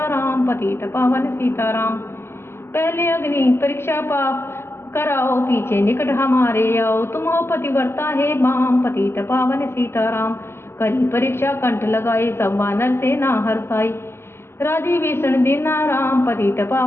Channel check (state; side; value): late; right; 0.12 ms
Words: राम, पतित पावन सीताराम। पहले अग्नि परीक्षा पाप कराओ, पीछे निकट हमारे आओ। तुम हो पतिव्रता है बाम, पतित पावन सीताराम। करी परीक्षा कंठ लगाई, सब वानर सेना हर्षाई। राजी विष्णु दीना राम, पतित